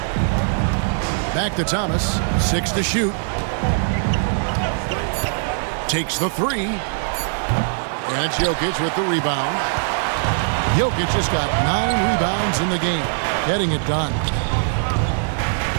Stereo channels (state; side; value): silent; left; digital silence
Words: Back to Thomas. 6 to shoot. Takes the 3. And it's Jokic with the rebound. Jokic just got 9 rebounds in the game, getting it done.